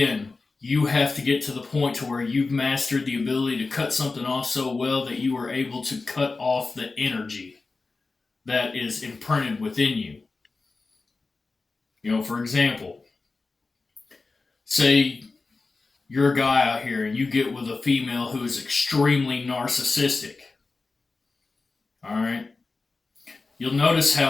you have to get to the point to where you've mastered the ability to cut something off so well that you are able to cut off the energy that is imprinted within you. For example, say you're a guy out here and you get with a female who is extremely narcissistic. All right? You'll notice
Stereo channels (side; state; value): right; quieter; 3.9 dB